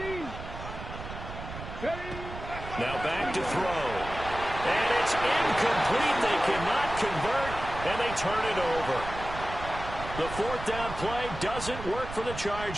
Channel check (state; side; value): noise; right; rumble, 10 dB below the sound